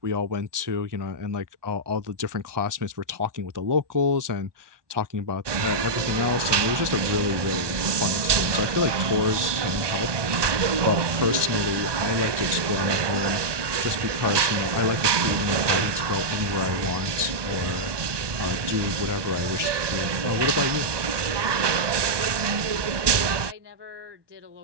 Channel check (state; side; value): late; left; 1.2 ms